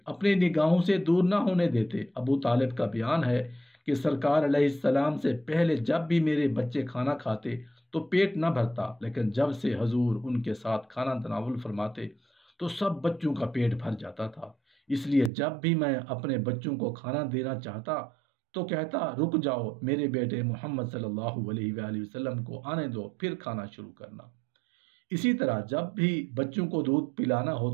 اپنی نگاہوں سے دور نہ ہونے دیتے۔ ابو طالب کا بیان ہے کہ سرکار علیہ السلام سے پہلے جب بھی میرے بچے کھانا کھاتے تو پیٹ نہ بھرتا، لیکن جب سے حضور ان کے ساتھ کھانا تناول فرماتے تو سب بچوں کا پیٹ بھر جاتا تھا۔ اس لیے جب بھی میں اپنے بچوں کو کھانا دینا چاہتا تو کہتا، رک جاؤ، میرے بیٹے محمد صلی اللہ علیہ وآلہ وسلم کو آنے دو، پھر کھانا شروع کرنا۔ اسی طرح جب بھی بچوں کو دودھ پلانا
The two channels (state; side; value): drops out; left; at 15.3 s